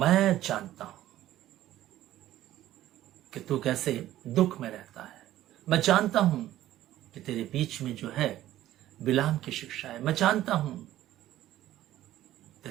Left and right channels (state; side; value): quieter; left; 13.8 dB